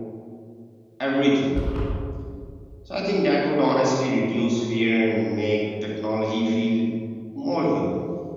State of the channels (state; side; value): identical; both; correlation 1.00